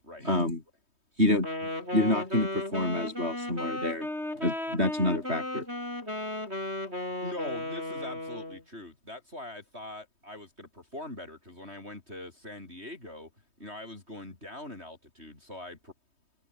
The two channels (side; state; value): left; late; 3.2 ms